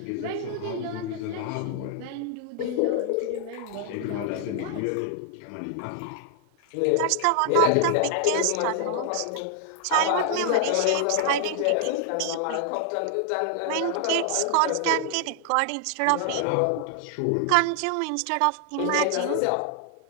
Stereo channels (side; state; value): both; different; correlation 0.00